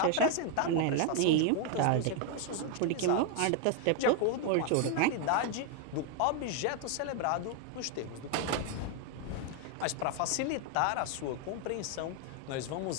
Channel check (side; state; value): both; different; correlation 0.01